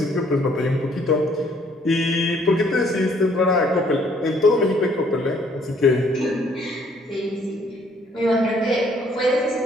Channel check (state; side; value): normal; both; correlation 0.63